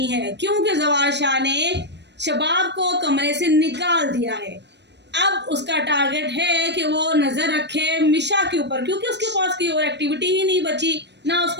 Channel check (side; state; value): left; late; 0.50 ms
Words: है, क्योंकि जवार शाह ने शबाब को कमरे से निकाल दिया है। अब उसका टारगेट है कि वो नजर रखे मिशा के ऊपर, क्योंकि उसके पास कोई और एक्टिविटी ही नहीं बची, ना